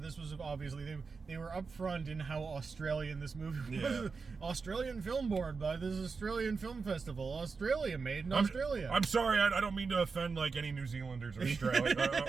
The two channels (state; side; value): quieter; left; 4.8 dB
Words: obviously they were upfront in how Australian this movie was. Yeah. Australian Film Board by this Australian Film Festival. Australia, made in Australia. I'm sorry, I don't mean to offend like any New Zealanders or